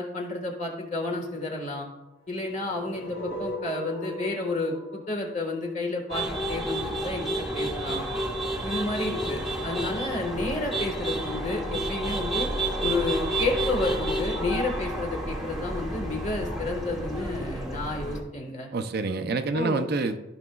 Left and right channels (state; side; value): normal; both; correlation 0.57